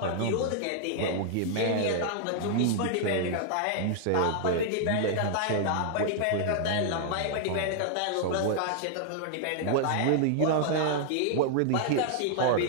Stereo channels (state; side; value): different; both; correlation -0.01